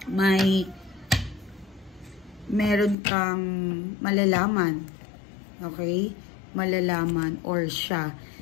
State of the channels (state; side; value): drops out; right; at 3.0 s